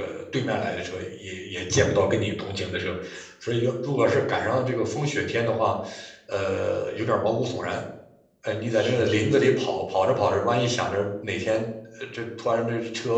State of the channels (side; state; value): both; identical; correlation 1.00